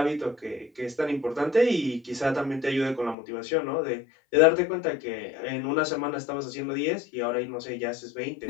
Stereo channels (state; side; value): drops out; right; at 3.2 s